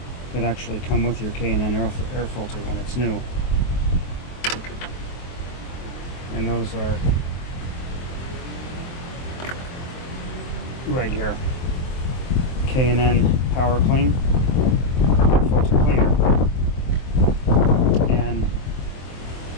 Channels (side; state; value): right; late; 23 ms